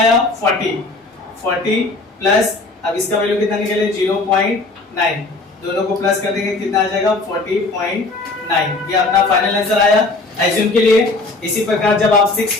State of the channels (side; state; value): right; quieter; 3.3 dB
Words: 40 प्लस अब इसका वैल्यू कितना निकले? 0.9। दोनों को प्लस कर देंगे कितना आ जाएगा 40.9। ये अपना फाइनल आंसर आया एज्यूम के लिए। इसी प्रकार जब आप